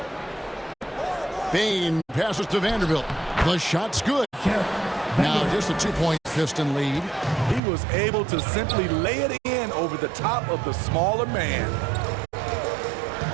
Bain passes to Vanderbilt. The shot's good. Now just a 2-point Piston lead. He was able to simply lay it in over the top of the smaller man.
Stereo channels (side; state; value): left; drops out; at 7.6 s